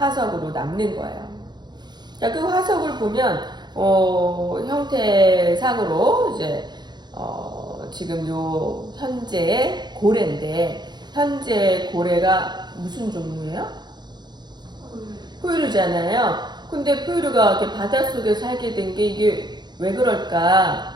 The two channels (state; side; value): late; left; 0.21 ms